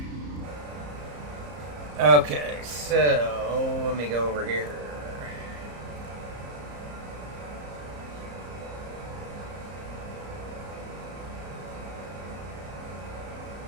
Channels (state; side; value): late; left; 34 ms